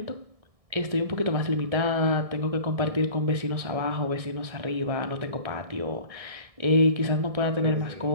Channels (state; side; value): late; left; 1.6 ms